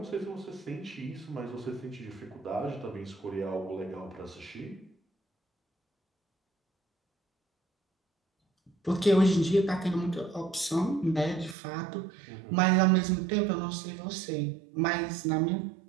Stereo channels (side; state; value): left; drops out; at 11.6 s